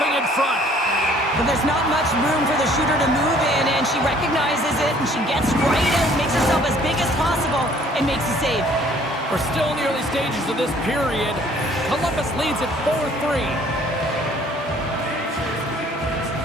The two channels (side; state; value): both; normal; correlation 0.57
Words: in front. But there's not much room for the shooter to move in, and she recognizes it, and she gets right out, makes herself as big as possible, and makes a save. We're still in the early stages of this period. Columbus leads at 4-3.